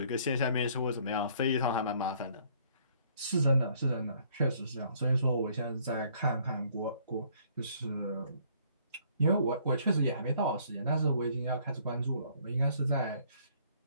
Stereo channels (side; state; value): both; inverted; correlation -0.62